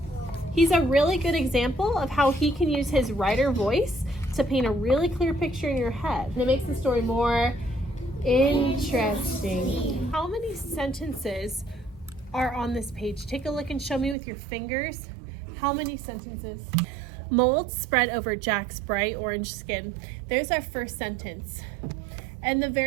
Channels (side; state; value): left; drops out; at 14.2 s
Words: he's a really good example of how he can use his writer voice to paint a really clear picture in your head. And it makes the story more interesting. How many sentences are on this page? Take a look and show me with your fingers. How many sentences? Mold spread over Jack's bright orange skin. There's our first sentence. And the